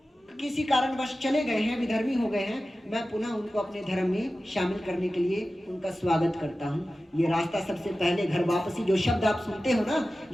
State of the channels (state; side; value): normal; both; correlation 0.95